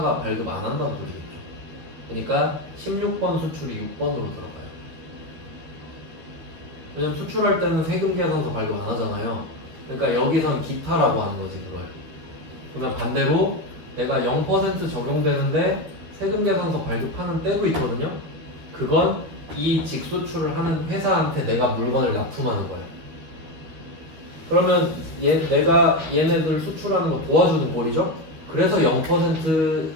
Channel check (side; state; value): left; late; 13 ms